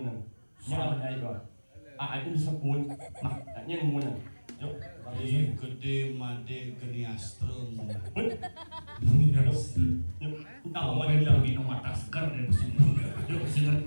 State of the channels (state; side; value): inverted; both; correlation -1.00